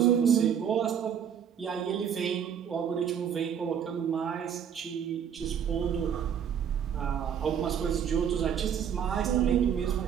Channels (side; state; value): left; quieter; 8.3 dB